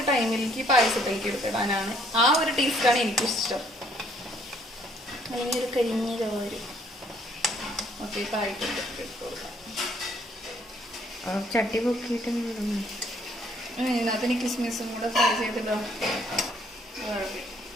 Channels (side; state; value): both; normal; correlation 0.65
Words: ടൈമിലേക്ക് പായസത്തിലേക്ക് എടുത്തിടാനാണ് ആ ഒരു ടേസ്റ്റാണ് എനിക്കിഷ്ടം. അല്ലെങ്കിൽ ഒരു കരിഞ്ഞ ചോര് ഒക്കെ ആയിട്ടുണ്ട് ഇട്ട് കൊടുക്കാം. ചട്ടി പൊക്കിയിട്ട് ഇതിനകത്ത് എനിക്ക് കിസ്മിസും കൂടെ ഫ്രൈ ചെയ്തിട്ടോ.